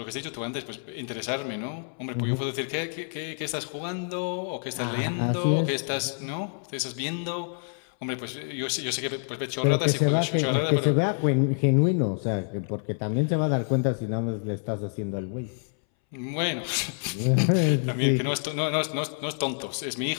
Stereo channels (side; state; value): right; silent; 60 dB below the other